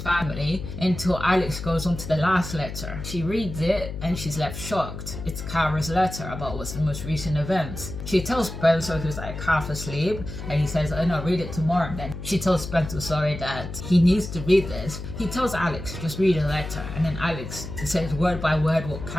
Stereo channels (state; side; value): noise; left; hum, 8 dB below the sound